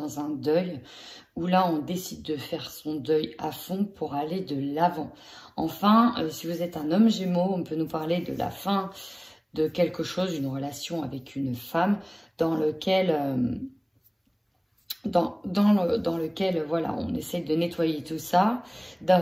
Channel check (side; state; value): both; identical; correlation 1.00